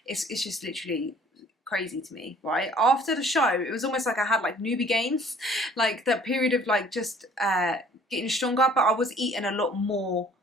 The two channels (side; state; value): both; normal; correlation 0.54